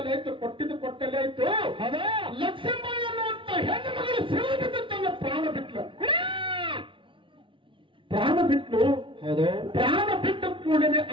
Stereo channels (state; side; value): late; left; 0.25 ms